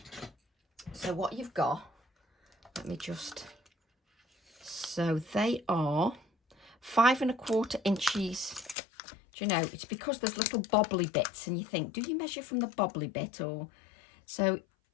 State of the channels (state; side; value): drops out; right; at 8.8 s